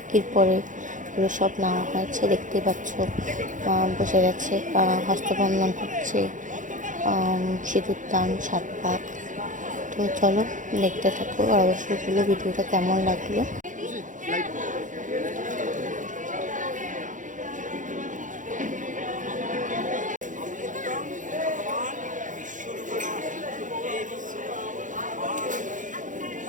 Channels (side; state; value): left; late; 0.37 ms